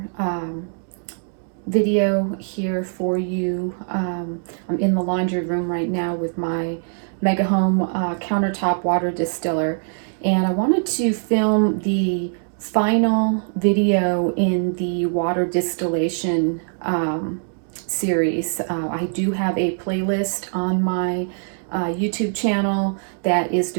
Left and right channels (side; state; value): left; silent; 64 dB below the other